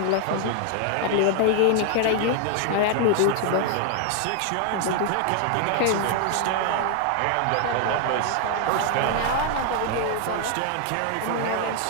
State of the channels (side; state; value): both; different; correlation 0.00